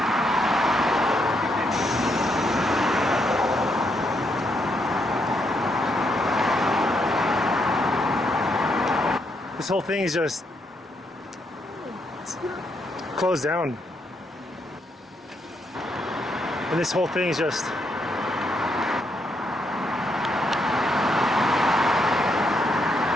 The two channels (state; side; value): normal; both; correlation 0.77